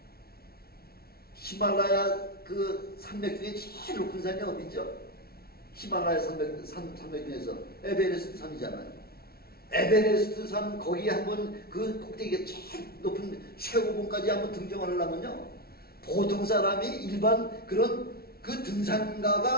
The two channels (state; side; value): late; right; 0.44 ms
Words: 히말라야 그 산맥 중에 제일 높은 산이 어디죠? 히말라야 산맥 중에서 에베레스트 산이잖아요. 에베레스트 산 거기에 한번 그 꼭대기가 제일 높은 최고봉까지 한번 등정을 하려면요, 보통 사람이 일반 그런 그 등산가들만